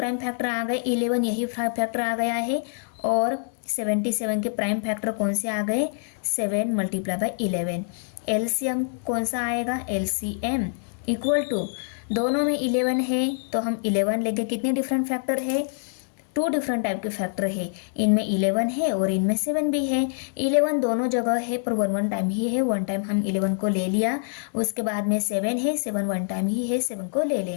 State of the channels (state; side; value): silent; right; digital silence